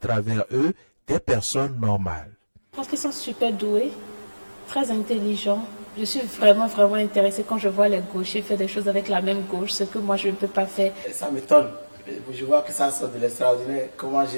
eux des personnes normales. Je pense qu'ils sont super doués, très intelligents. Je suis vraiment intéressée quand je vois les gauchers faire des choses avec la même gauche, ce que moi je ne peux pas faire. Ça m'étonne. Je vois que ça sort de l'extraordinaire. Comment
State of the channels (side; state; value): both; inverted; correlation -1.00